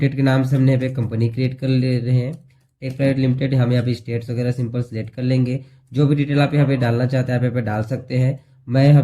के नाम से हमने यहाँ पे कंपनी क्रिएट कर ले रहे हैं। टेक प्राइवेट लिमिटेड, हम यहाँ पे स्टेट्स वगैरह सिंपल सेलेक्ट कर लेंगे। जो भी डिटेल आप यहाँ पे डालना चाहते हैं आप यहाँ पे डाल सकते हैं। मैं यहाँ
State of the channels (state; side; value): identical; both; correlation 1.00